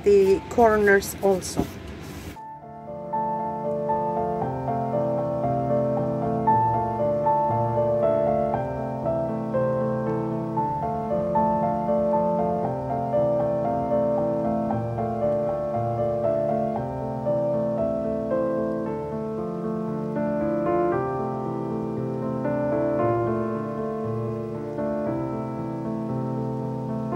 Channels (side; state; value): both; identical; correlation 1.00